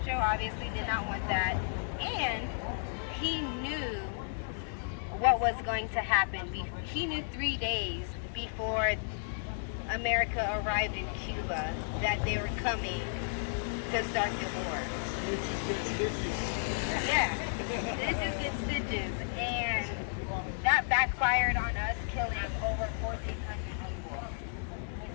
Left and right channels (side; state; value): right; silent; digital silence